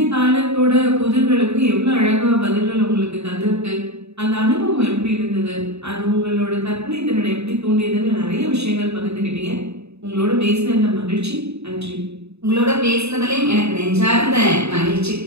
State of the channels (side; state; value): left; late; 0.80 ms